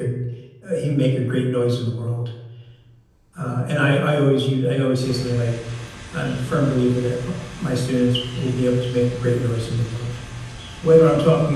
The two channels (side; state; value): both; identical; correlation 1.00